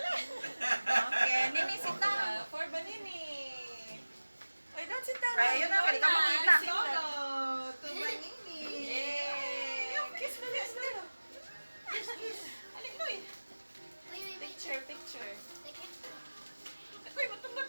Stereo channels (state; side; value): inverted; both; correlation -1.00